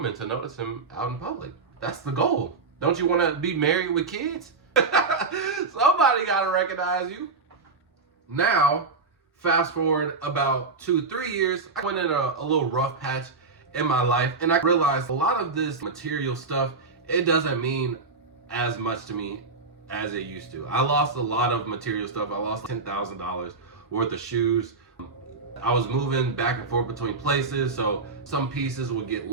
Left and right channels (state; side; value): quieter; left; 4.1 dB